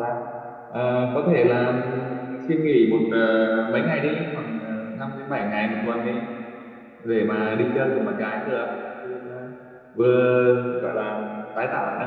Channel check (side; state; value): both; identical; correlation 1.00